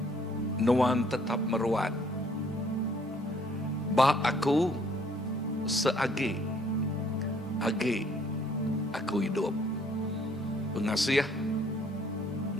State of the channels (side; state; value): both; normal; correlation 0.62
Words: nuan tetap meruat. Ba aku seagi, agi aku hidup. Pengasih